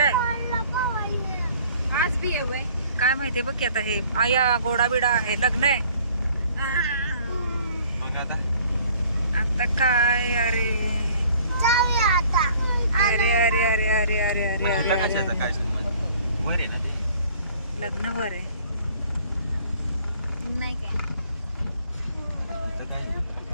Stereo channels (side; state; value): both; inverted; correlation -0.55